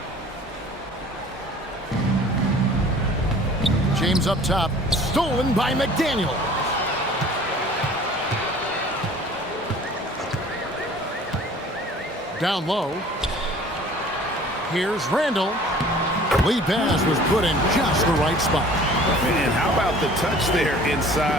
James up top, stolen by McDaniel. Down low. Here's Randall. Lead pass was put in just the right spot. And how about the touch there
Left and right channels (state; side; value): normal; both; correlation 0.48